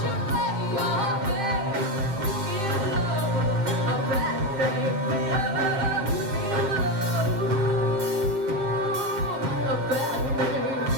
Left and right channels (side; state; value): left; late; 7.7 ms